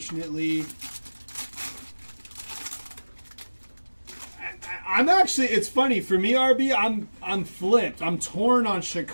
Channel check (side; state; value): both; inverted; correlation -1.00